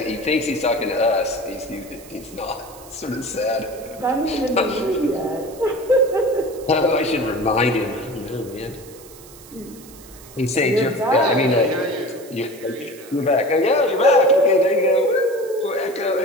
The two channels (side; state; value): right; noise; hiss, 20 dB below the sound